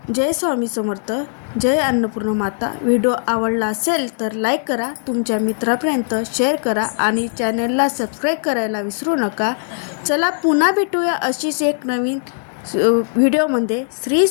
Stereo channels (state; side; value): silent; right; digital silence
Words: जय स्वामी समर्थ. जय अन्नपूर्णा माता. व्हिडिओ आवडला असेल तर लाईक करा, तुमच्या मित्रापर्यंत शेअर करा आणि चॅनलला सबस्क्राईब करायला विसरू नका. चला पुन्हा भेटूया अशीच एक नवीन व्हिडिओमध्ये. श्री